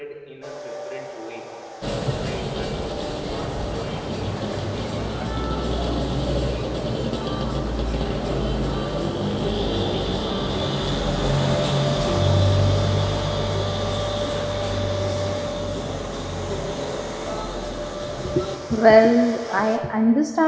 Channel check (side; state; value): both; identical; correlation 1.00